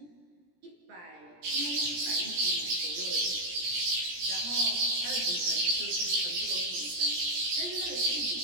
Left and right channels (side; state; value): left; late; 17 ms